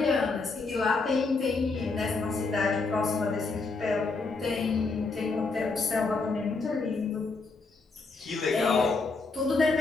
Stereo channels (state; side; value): quieter; right; 3.9 dB